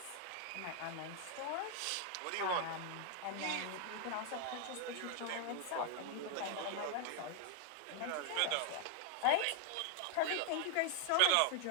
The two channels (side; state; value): both; different; correlation 0.00